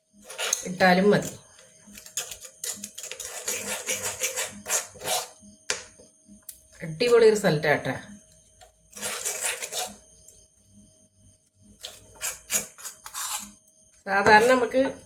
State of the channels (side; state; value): both; identical; correlation 1.00